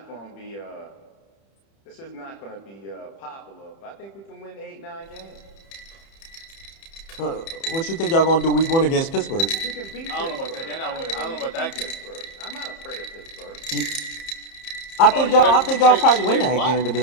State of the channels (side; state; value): right; late; 30 ms